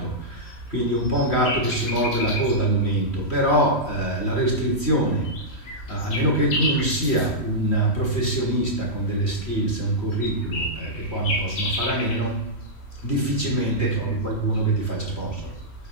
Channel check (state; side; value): late; right; 3.1 ms